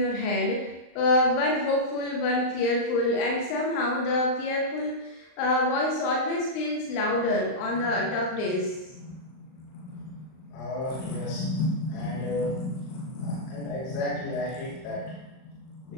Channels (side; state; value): right; late; 39 ms